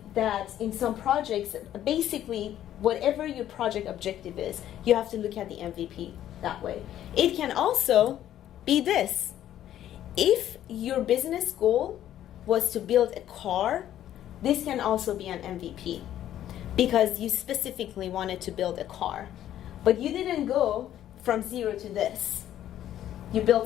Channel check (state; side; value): quieter; right; 11.8 dB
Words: that in some projects, basically, whatever your project objective is, you have to look at the MVP that way. It can also be this. If your business goal was to build a car, this can also be an MVP because you specifically wanted to build a car. But you didn't go from 0 to this. You